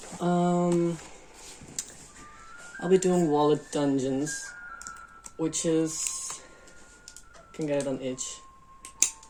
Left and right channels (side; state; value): both; identical; correlation 1.00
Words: I'll be doing wallet dungeons, which is, you can get it on itch.